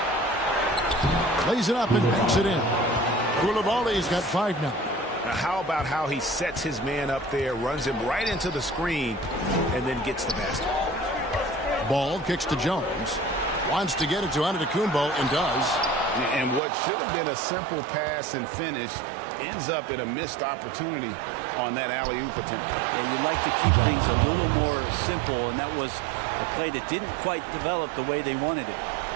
Lays it up and banks it in. Coulibaly's got 5 now. Now, how about how he sets his man up there, runs him right into the screen, and then gets the basket. Ball kicks to Jones. Wants to get it to Antetokounmpo and does. And what should have been a simple pass and finish ends up in a missed opportunity on that alley-oop attempt. Yeah, you'd like to keep things a little more simple, and that was a play that didn't quite develop the way they wanted it.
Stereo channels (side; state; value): left; drops out; at 16.6 s